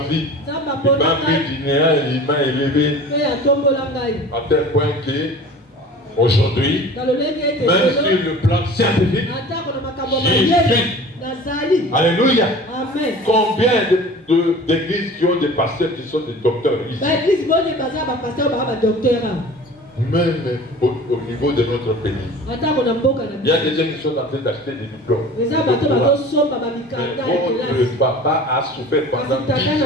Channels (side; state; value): both; normal; correlation 0.41